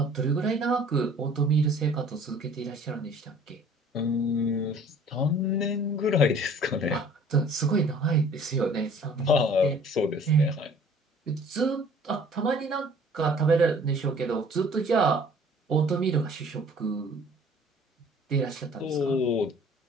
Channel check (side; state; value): both; normal; correlation 0.52